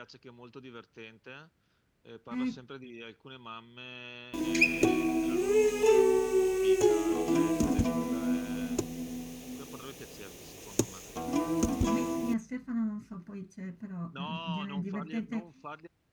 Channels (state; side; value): identical; both; correlation 1.00